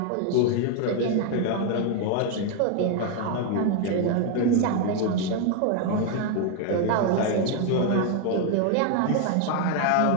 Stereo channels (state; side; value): different; both; correlation 0.01